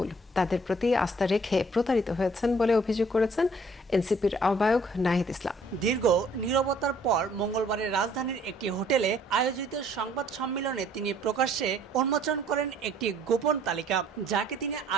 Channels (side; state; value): both; normal; correlation 0.60